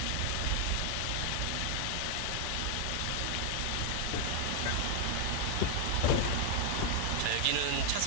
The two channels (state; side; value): different; both; correlation 0.00